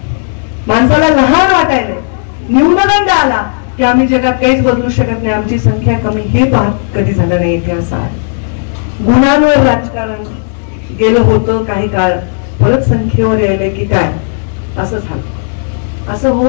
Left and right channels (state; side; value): silent; right; digital silence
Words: माणसाला लहान वाटायला, न्यूनगंड आला की आम्ही जगात काहीच बदलू शकत नाही, आमची संख्या कमी, हे पाहत कधी झालं नाही इथे. असं आहे. गुणांवर राजकारण गेलं होतं काही काळ, परत संख्येवर यायलंय की काय, असं झालं. असं